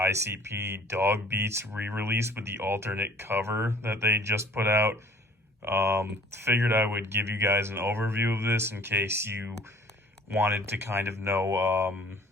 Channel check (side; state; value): both; normal; correlation 0.52